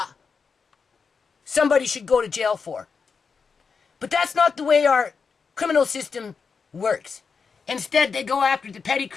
somebody should go to jail for. But that's not the way our criminal system works. Instead, they go after the petty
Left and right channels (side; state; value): right; quieter; 5.4 dB